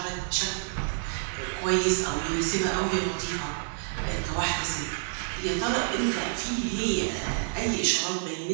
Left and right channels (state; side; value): silent; left; 59 dB below the other